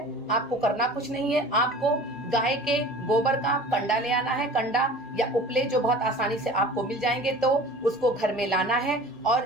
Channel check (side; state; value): both; normal; correlation 0.42